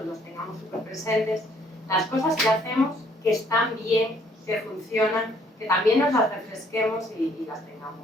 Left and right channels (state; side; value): normal; both; correlation 0.64